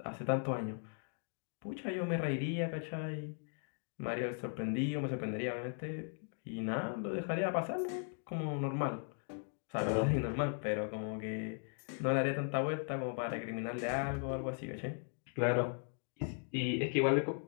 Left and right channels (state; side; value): silent; right; 52 dB below the other